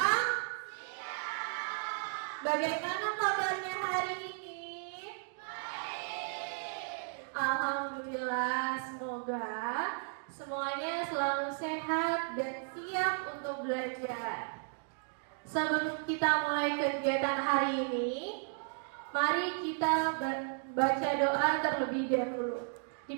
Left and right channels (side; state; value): left; silent; 55 dB below the other